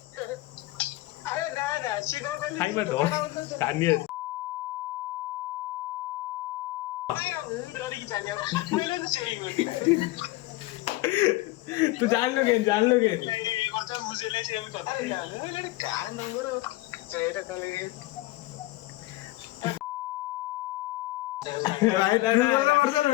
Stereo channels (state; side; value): quieter; right; 18.7 dB